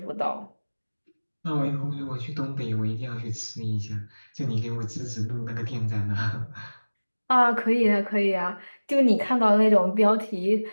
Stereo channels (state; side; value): inverted; both; correlation -1.00